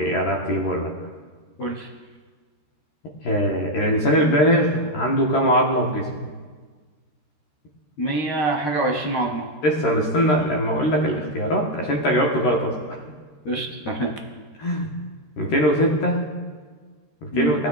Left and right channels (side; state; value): right; late; 13 ms